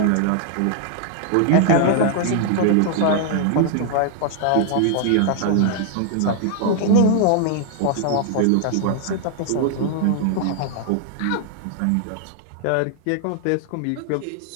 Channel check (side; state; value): both; different; correlation 0.00